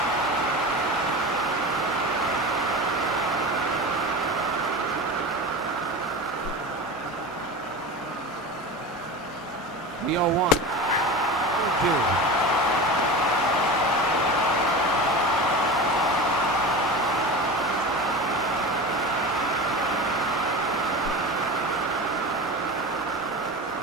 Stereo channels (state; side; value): normal; both; correlation 0.30